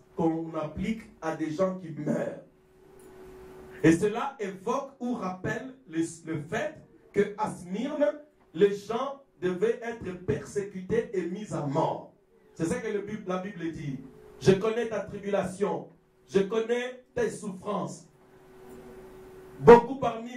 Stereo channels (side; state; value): both; identical; correlation 1.00